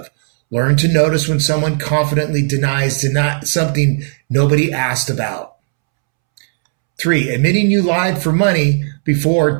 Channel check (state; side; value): silent; left; 70 dB below the other